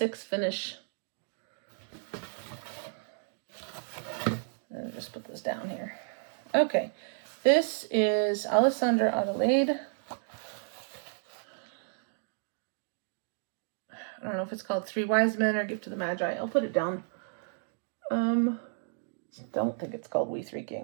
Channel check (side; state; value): left; silent; digital silence